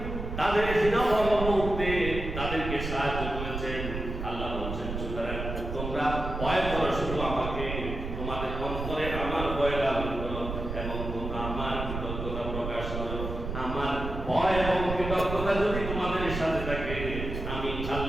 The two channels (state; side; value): noise; right; rumble, 5 dB below the sound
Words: তাদের হীনবল মুহূর্তে তাদেরকে সাহায্য করেছেন। আল্লাহ বলছেন সুতরাং তোমরা তোমরা ভয় করো শুধু আমাকে, তোমাদের অন্তরে আমার ভয় লালন করো এবং তোমরা আমার কৃতজ্ঞতা প্রকাশ করো। আমার ভয় এবং কৃতজ্ঞতা যদি তোমাদের সাথে থাকে, আমি